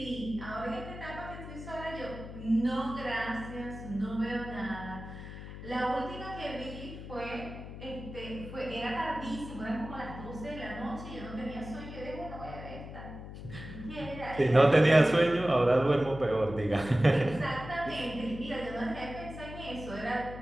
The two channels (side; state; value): left; noise; hum, 11 dB below the sound